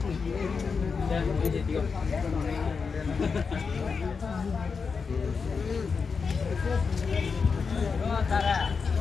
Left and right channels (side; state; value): right; quieter; 5.3 dB